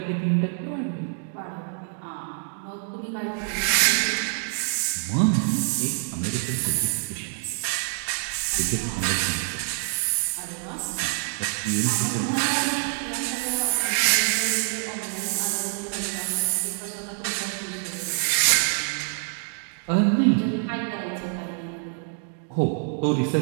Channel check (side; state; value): left; silent; 57 dB below the other